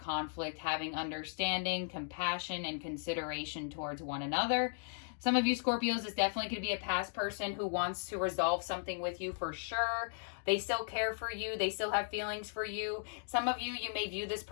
having understanding, compassion, and consideration towards one another. Some of you Scorpios, this definitely could be a past person who wants to resolve something with you for sure. They still care for you. They still have feelings for you. Some of you, you may view this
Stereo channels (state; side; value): silent; right; digital silence